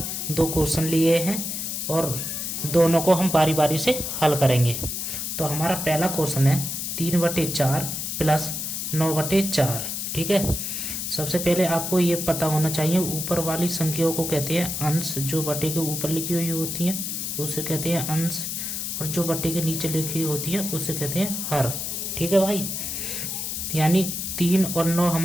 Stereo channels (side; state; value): left; noise; hiss, 3 dB below the sound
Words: दो क्वेश्चन लिए हैं और दोनों को हम बारी बारी से हल करेंगे। तो हमारा पहला क्वेश्चन है 3/4 प्लस 9/4। ठीक है, सबसे पहले आपको ये पता होना चाहिए, ऊपर वाली संख्याओं को कहते हैं अंश। जो बटे के ऊपर लिखी हुई होती है उसे कहते हैं अंश, और जो बटे के नीचे लिखी होती है उसे कहते हैं हर। ठीक है भाई, यानी 3 और 9